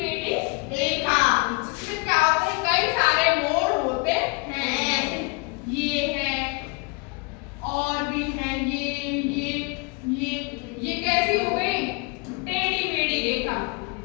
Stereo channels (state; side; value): quieter; right; 28.9 dB